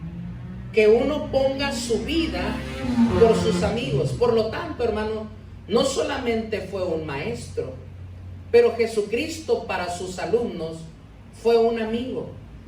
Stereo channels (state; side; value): identical; both; correlation 1.00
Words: que uno ponga su vida por sus amigos. Por lo tanto, hermano, no solamente fue un maestro, pero Jesucristo para sus alumnos fue un amigo,